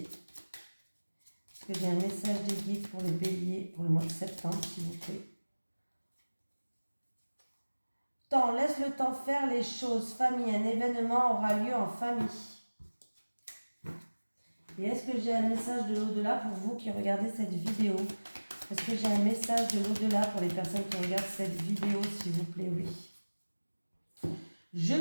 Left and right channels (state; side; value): inverted; both; correlation -1.00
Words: Est-ce que j'ai un message des guides pour les béliers pour le mois de septembre, s'il vous plaît? Temps, laisse le temps faire les choses. Famille, un événement aura lieu en famille. Et est-ce que j'ai un message de l'au-delà pour vous qui regardez cette vidéo? Est-ce que j'ai un message de l'au-delà pour les personnes qui regardent cette vidéo, s'il vous plaît? Oui. Je